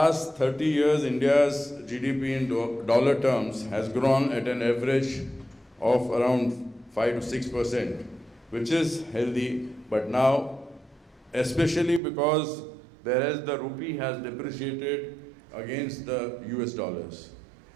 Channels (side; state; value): left; drops out; at 12.0 s